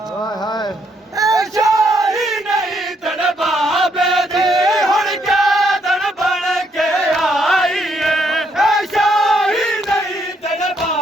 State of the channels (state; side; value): normal; both; correlation 0.73